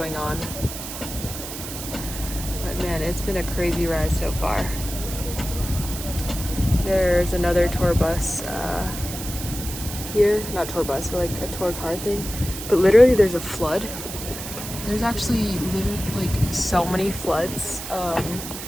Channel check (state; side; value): noise; right; hiss, 9 dB below the sound